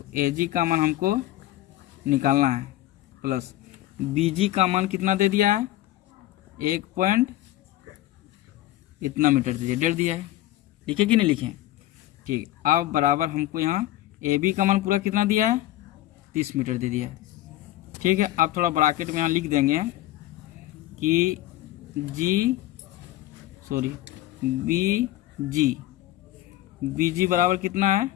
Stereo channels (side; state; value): right; quieter; 15.2 dB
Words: ए जी का मान हमको निकालना है, प्लस बी जी का मान कितना दे दिया है? 1 पॉइंट इतना मीटर दे दिया, 1.5 दिया है। लिखे कि नहीं लिखे? ठीक। अब बराबर हमको यहाँ ए बी का मान पूरा कितना दिया है? 30 मीटर दे दिया है। ठीक है। अब थोड़ा ब्रैकेट में यहाँ लिख देंगे कि बी जी बराबर कितना है?